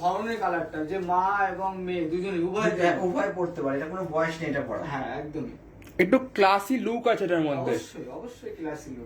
কালারটা, যে মা এবং মেয়ে দুজনে উভয় পড়তে পারে, এটা কোনো বয়স নেই এটা পড়া। হ্যাঁ একদমই, একটু ক্লাসি লুক আছে এটার মধ্যে। অবশ্যই ক্লাসি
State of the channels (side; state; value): both; identical; correlation 1.00